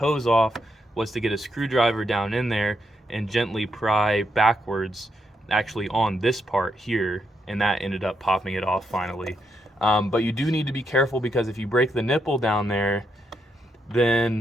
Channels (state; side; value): normal; both; correlation 0.80